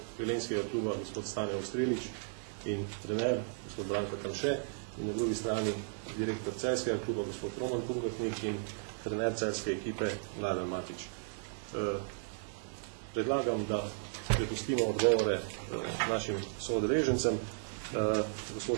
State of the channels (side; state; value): left; silent; digital silence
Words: velenjskega kluba gospod Stane Ostrilič in trener gospod Branko Tamše, in na drugi strani direktor celjskega kluba gospod Roman Pungatnik in trener celjske ekipe Mladen Matič. Predlagam, da prepustimo odgovore našim soodeležencem.